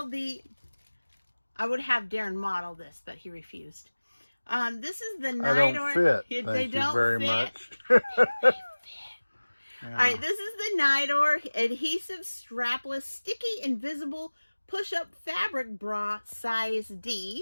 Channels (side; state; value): both; inverted; correlation -1.00